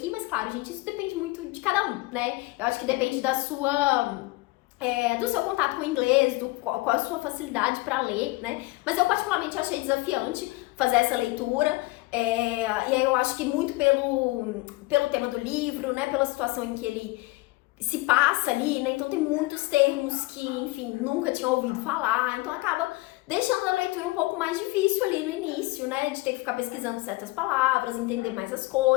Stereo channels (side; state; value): right; quieter; 21.6 dB